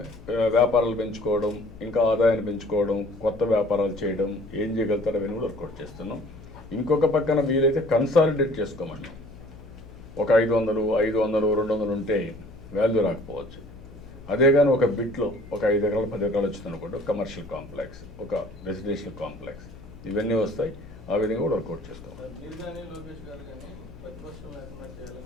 వ్యాపారాలు పెంచుకోవడం, ఇంకా ఆదాయాన్ని పెంచుకోవడం, కొత్త వ్యాపారాలు చేయడం, ఏం చేయగలుగుతారో అవన్నీ కూడా వర్కౌట్ చేస్తున్నాం. ఇంకొక పక్కన వీలైతే కన్సాలిడేట్ చేసుకోమన్నాం. ఒక 500 200 ఉంటే వాల్యూ రాకపోవచ్చు. అదే కానీ ఒక బిట్లో ఒక 5 ఎకరాలు 10 ఎకరాలు వచ్చిందనుకోండి, ఒక కమర్షియల్ కాంప్లెక్స్, ఒక రెసిడెన్షియల్ కాంప్లెక్స్, ఇవన్నీ వస్తాయి. ఆ విధంగా కూడా వర్కౌట్ చేస్తాం.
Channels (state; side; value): noise; left; hum, 18 dB below the sound